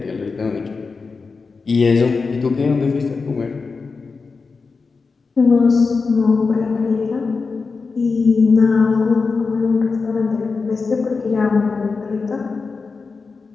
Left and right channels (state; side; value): quieter; right; 4.5 dB